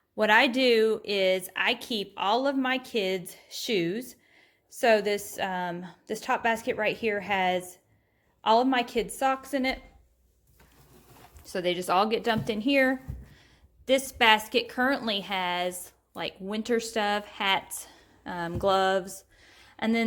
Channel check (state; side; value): identical; both; correlation 1.00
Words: What I do is I keep all of my kids' shoes. So this top basket right here has all of my kids' socks in it. So they just all get dumped in here. This basket currently has like winter stuff, hats, gloves. And